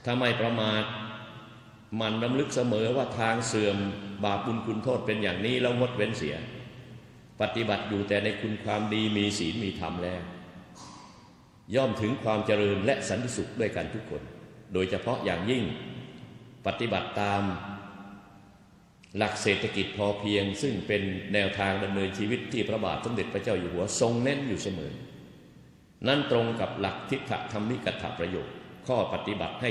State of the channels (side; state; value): both; identical; correlation 1.00